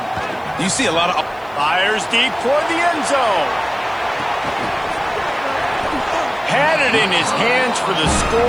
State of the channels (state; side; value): noise; right; hiss, 30 dB below the sound